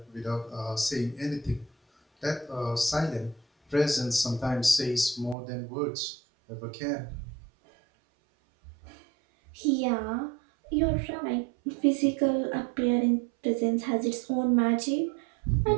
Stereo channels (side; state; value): left; drops out; at 5.4 s